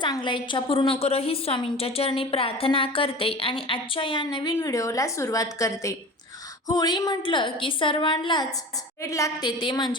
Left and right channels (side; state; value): both; normal; correlation 0.36